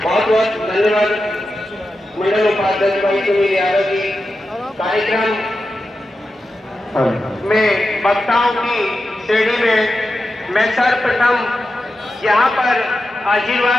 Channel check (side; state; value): both; normal; correlation 0.90